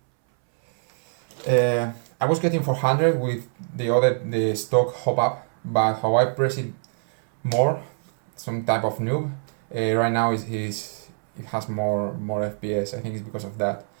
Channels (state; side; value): silent; left; 62 dB below the other